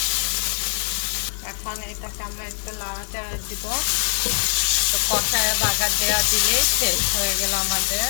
এখন এটাকে আমরা একটু লাড়াচাড়া দিব। তো কষায় বাগার দেওয়া দিলেই শেষ হয়ে গেল আমাদের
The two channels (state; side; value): silent; right; 55 dB below the other